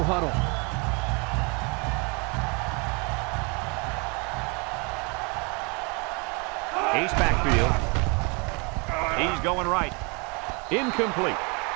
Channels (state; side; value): quieter; left; 31.5 dB